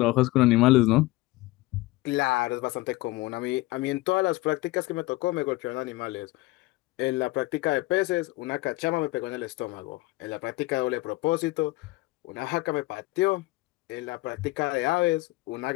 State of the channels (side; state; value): right; quieter; 20.2 dB